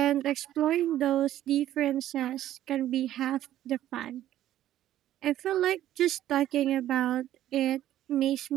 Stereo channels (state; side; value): quieter; left; 12.8 dB